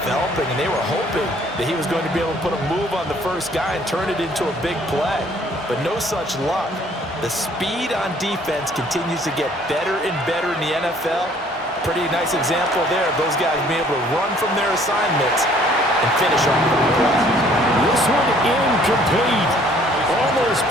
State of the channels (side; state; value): both; normal; correlation 0.59